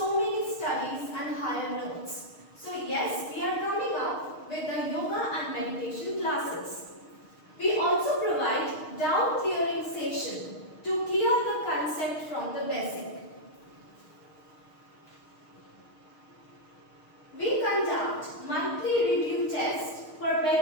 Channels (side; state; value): right; late; 6.5 ms